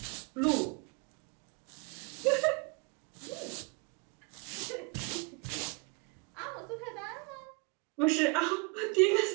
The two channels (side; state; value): left; quieter; 32.7 dB